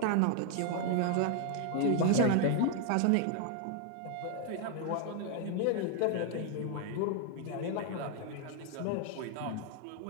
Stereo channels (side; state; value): both; different; correlation 0.00